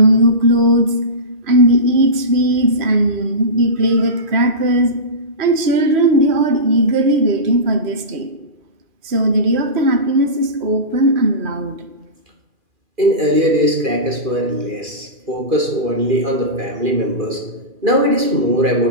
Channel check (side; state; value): left; late; 2.4 ms